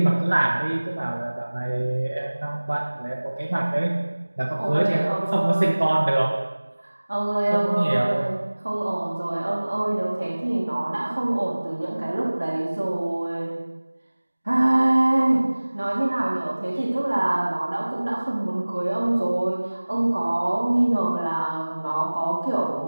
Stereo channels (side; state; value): both; inverted; correlation -1.00